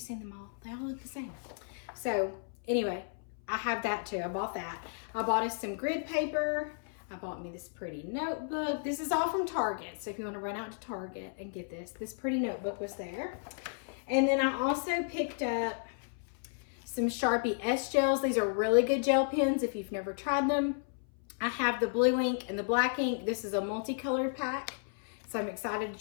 them all? They all look the same. So anyway, I have that too. I bought that. I bought us some grid paper. I bought me this pretty notebook. This is all from Target. So if you want to run out to Target and get this pretty notebook was there. And then I also picked up some Sharpie S gels. These are really good gel pens if you've never tried them. I have the blue ink and the black ink. This is a multicolored pack, so I'm excited to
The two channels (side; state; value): right; silent; 56 dB below the other